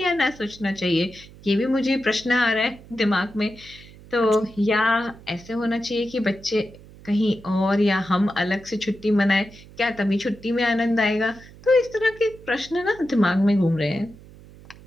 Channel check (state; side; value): noise; right; hum, 21 dB below the sound